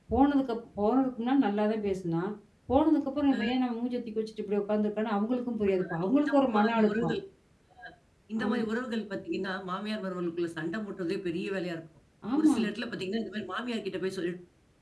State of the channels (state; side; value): identical; both; correlation 1.00